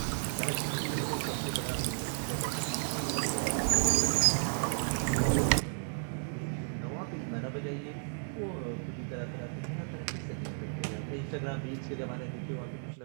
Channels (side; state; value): left; silent; 56 dB below the other